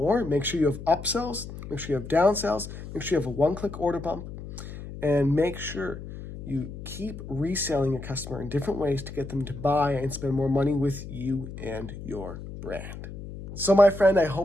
make sure you have upsells, make sure you have downsells, make sure you have a one-click order bump, and make sure you keep reselling your customer in different ways to get them to buy and spend more money with you and your brand. So my friend, I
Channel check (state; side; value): noise; left; hum, 11 dB below the sound